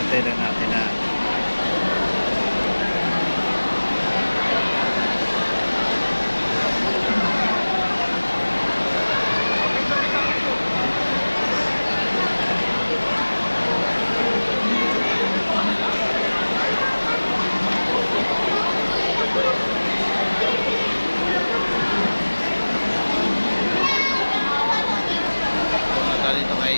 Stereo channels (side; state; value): both; inverted; correlation -1.00